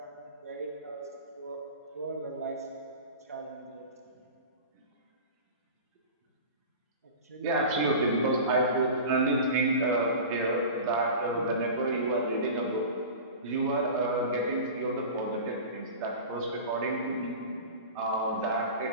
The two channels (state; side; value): inverted; both; correlation -0.34